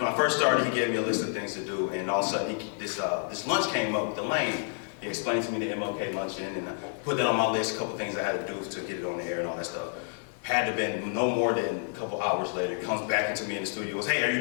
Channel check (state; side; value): silent; right; 58 dB below the other